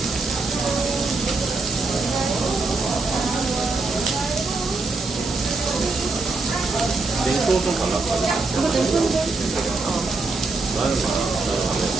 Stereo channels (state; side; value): quieter; left; 3.6 dB